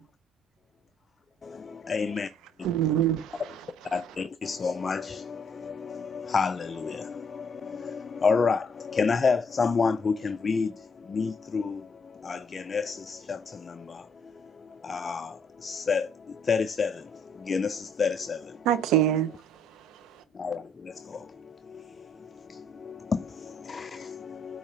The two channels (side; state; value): both; normal; correlation 0.68